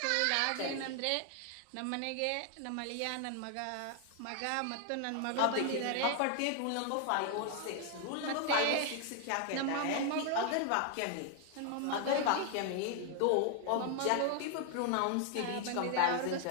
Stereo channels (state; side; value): different; both; correlation 0.00